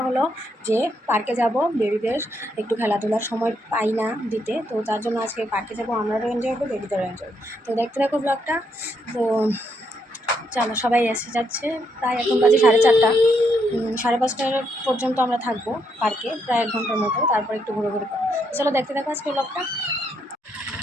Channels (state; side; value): normal; both; correlation 0.76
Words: হলো যে পার্কে যাব, বেবিদের একটু খেলাধুলার সময় পাই না দিতে, তো তার জন্য আজকে পার্কে যাব। আমরাও এনজয় করবো, বেবিদেরও এনজয়। তো দেখতে থাকো ব্লগটা। তো চলো, সবাই এসে যাচ্ছে। প্রায় এখন বাজে 4:30, 5:30 পর্যন্ত আমরা থাকবো পার্কে, প্রায় 1 ঘন্টার মতো। তারপর একটু ঘুরে ঘুরে পাবো। চলো দেখতে থাকো আজকে ব্লগটা।